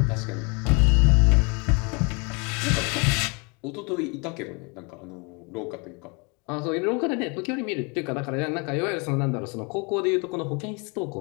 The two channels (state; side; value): quieter; right; 31.5 dB